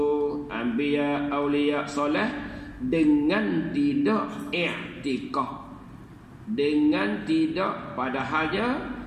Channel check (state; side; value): identical; both; correlation 1.00